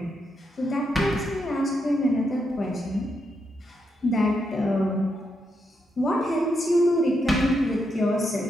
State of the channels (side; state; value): both; normal; correlation 0.81